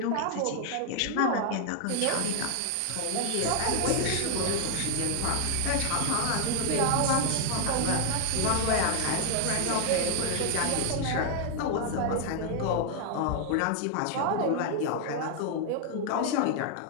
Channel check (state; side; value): different; both; correlation 0.00